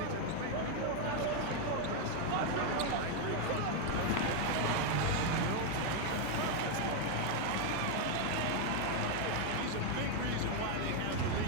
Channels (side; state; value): both; different; correlation 0.01